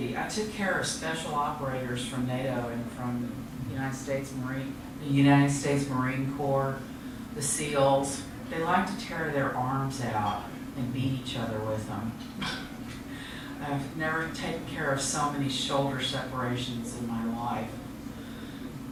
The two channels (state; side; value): identical; both; correlation 1.00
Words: I took care of special operators from NATO and from the United States Marine Corps, the SEALs. They like to tear their arms out and beat each other with them. I've never taken care of so many shoulder separations in my life.